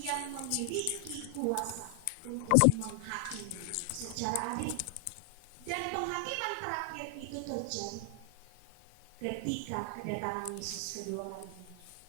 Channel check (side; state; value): both; different; correlation 0.00